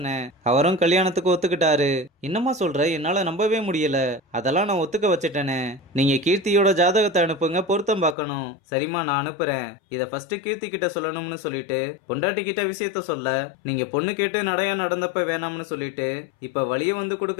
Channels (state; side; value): drops out; right; at 8.2 s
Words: அவரும் கல்யாணத்துக்கு ஒத்துக்கிட்டாரு. என்னம்மா சொல்ற, என்னால நம்பவே முடியல, அதெல்லாம் நான் ஒத்துக்க வச்சுட்டேனே, நீங்க கீர்த்தியோட ஜாதகத்தை அனுப்புங்க, பொருத்தம் பார்க்கணும். சரிம்மா நான் அனுப்புறேன், இத ஃபர்ஸ்ட் கீர்த்தி கிட்ட சொல்லணும்னு சொல்லிட்டு பொண்டாட்டி கிட்ட விஷயத்த சொல்ல, நீங்க பொண்ணு கேட்டு நடையா நடந்தப்ப வேணாம்னு சொல்லிட்டு இப்ப வழிய வந்து